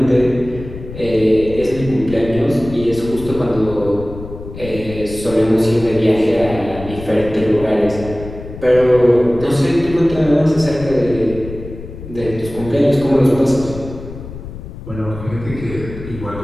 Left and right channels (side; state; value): left; noise; rumble, 12 dB below the sound